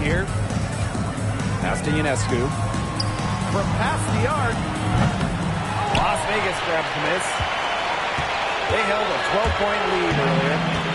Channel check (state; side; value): identical; both; correlation 1.00